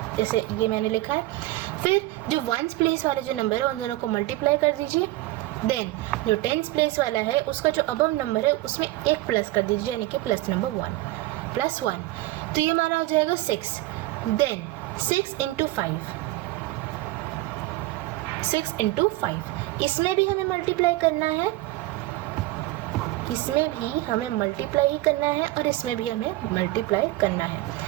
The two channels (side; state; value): left; quieter; 17.6 dB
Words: जैसे ये मैंने लिखा है. फिर जो वंस प्लेस वाले जो नंबर है उन दोनों को मल्टीप्लाई कर दीजिए. देन जो टेंस प्लेस वाला है उसका जो अबव नंबर है उसमें एक प्लस कर दीजिए, यानी कि प्लस नंबर 1, प्लस 1. तो ये हमारा हो जाएगा 6. Then 6 into 5. 6 into 5. इसमें भी हमें मल्टीप्लाई करना है, इसमें भी हमें मल्टीप्लाई ही करना है, और इसमें भी हमें मल्टीप्लाई करना है.